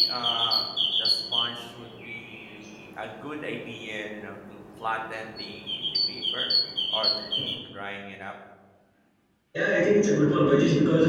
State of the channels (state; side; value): identical; both; correlation 1.00